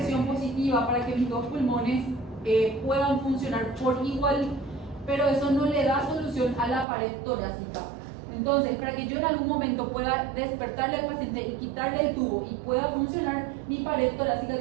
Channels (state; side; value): drops out; left; at 6.9 s